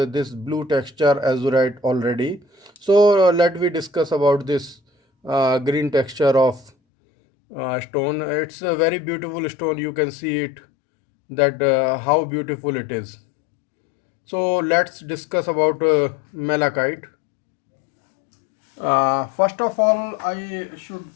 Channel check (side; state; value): right; drops out; at 6.7 s